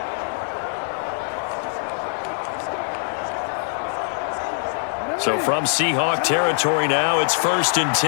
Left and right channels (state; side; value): silent; right; digital silence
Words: So from Seahawk territory now, it's 1st and